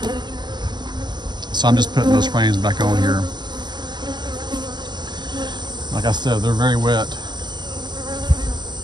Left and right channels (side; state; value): left; late; 0.21 ms